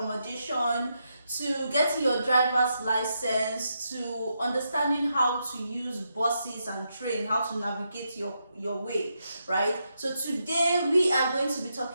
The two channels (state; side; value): inverted; both; correlation -0.82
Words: to getting your driver's license, to understanding how to use buses and train, how to navigate your way, right? So today we are going to be